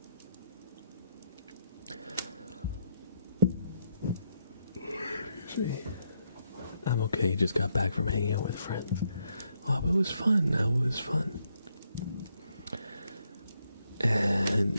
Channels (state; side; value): inverted; both; correlation -0.78